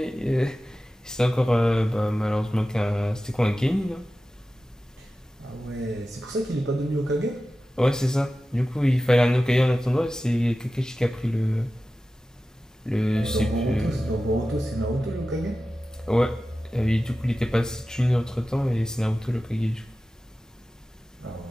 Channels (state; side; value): normal; both; correlation 0.95